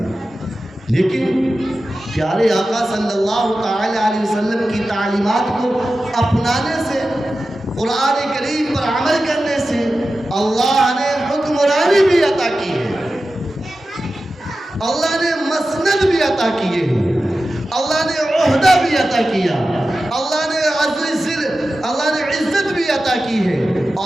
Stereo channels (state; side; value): normal; both; correlation 0.93